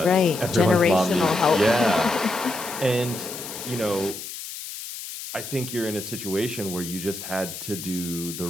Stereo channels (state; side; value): noise; left; hiss, 10 dB below the sound